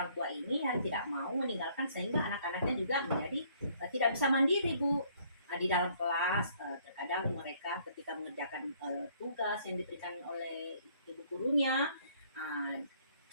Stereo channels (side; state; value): both; inverted; correlation -0.63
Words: tua ini yang tidak mau meninggalkan, sehingga anak-anaknya juga menjadi tidak bisa mandiri Bu. Di dalam kelas terkadang mereka ketika mengerjakan tugas yang diberikan oleh ibu gurunya,